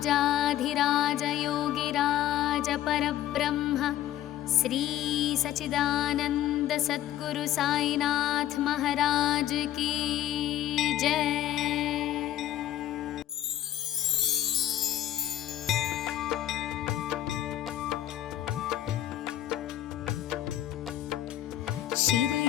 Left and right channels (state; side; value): quieter; right; 12.6 dB